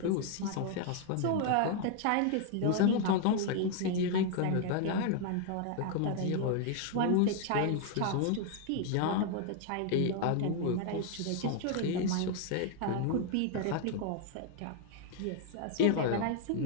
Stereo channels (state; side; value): different; both; correlation 0.00